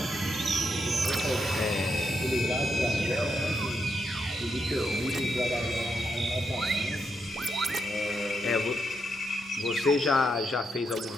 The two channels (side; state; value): both; normal; correlation 0.81